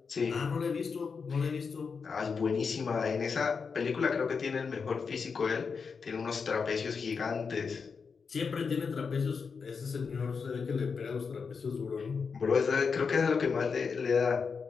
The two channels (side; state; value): right; quieter; 5.5 dB